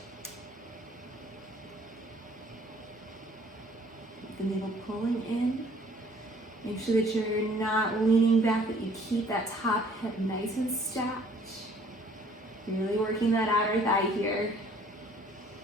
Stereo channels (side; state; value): both; normal; correlation 0.57